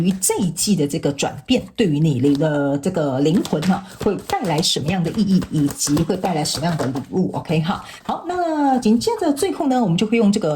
这一季的这个转变对于你的这个灵魂会带来什么样的意义，以及会带来什么样的礼物。 OK， 好，那紧接着最后呢，我们就会用这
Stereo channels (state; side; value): identical; both; correlation 1.00